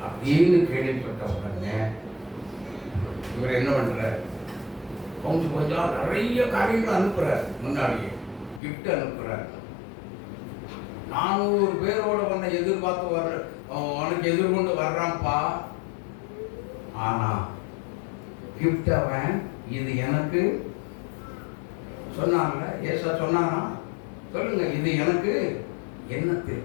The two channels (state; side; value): drops out; right; at 8.6 s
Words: அப்படின்னு கேள்விப்பட்ட உடனே இவர் என்ன பண்றார்? கொஞ்சம் நிறைய காரியங்கள் அனுப்புறார். முன்னாடியே கிஃப்ட் அனுப்புறார். 400 பேரோட உன்னை எதிர்பார்த்து வர்ற, உனக்கு எதிர்கொண்டு வர்றான்ப்பா. ஆனா கிஃப்ட் அவன் இது எனக்கு சொன்னான்ல, ஏசா சொன்னானா? சொல்லுங்க, இது எனக்கு